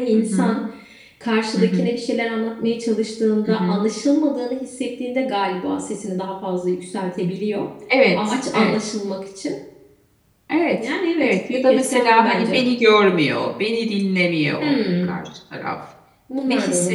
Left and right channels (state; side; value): identical; both; correlation 1.00